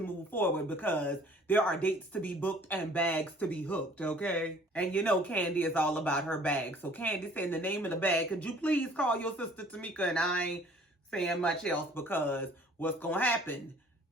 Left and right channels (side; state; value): both; normal; correlation 0.54